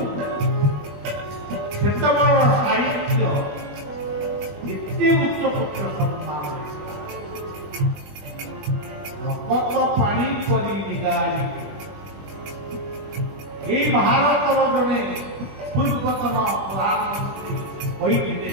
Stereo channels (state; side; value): late; left; 21 ms